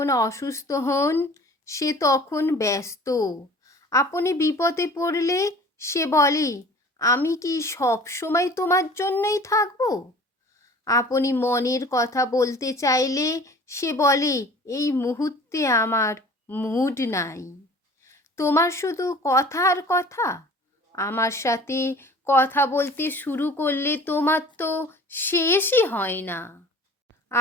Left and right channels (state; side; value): normal; both; correlation 0.46